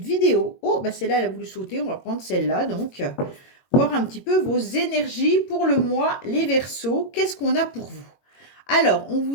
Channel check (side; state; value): right; late; 22 ms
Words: vidéo. Oh, bah celle-là, elle a voulu sauter. On va prendre celle-là. Donc, voir un petit peu vos énergies pour le mois, les Verseaux. Qu'est-ce qu'on a pour vous? Alors, on